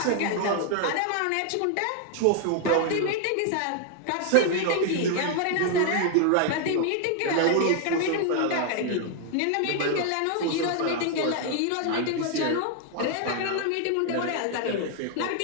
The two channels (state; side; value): different; both; correlation 0.00